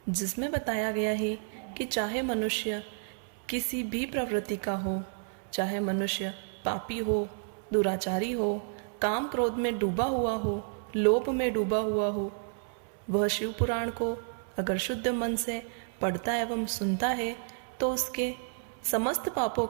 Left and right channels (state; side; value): silent; left; 57 dB below the other